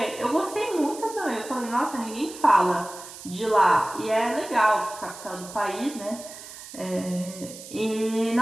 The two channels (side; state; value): right; noise; hiss, 14 dB below the sound